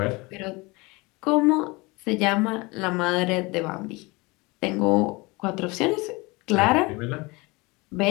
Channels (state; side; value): quieter; right; 24.7 dB